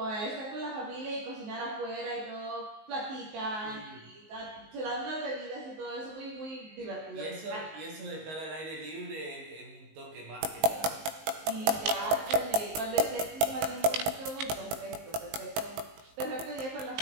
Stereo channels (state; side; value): late; left; 19 ms